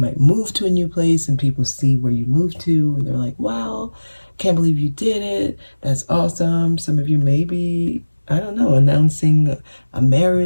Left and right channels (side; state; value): both; inverted; correlation -1.00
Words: move to a new place and people see where you moved to and they're like, wow, can't believe you did it. That's awesome. Some of you may be, I don't know, announcing a